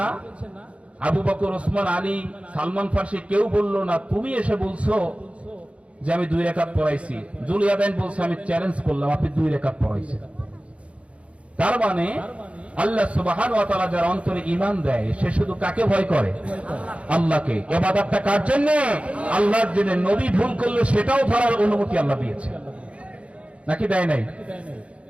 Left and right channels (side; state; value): left; late; 0.062 ms